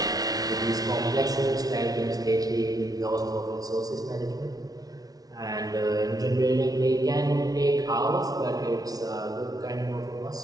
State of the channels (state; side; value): late; left; 0.18 ms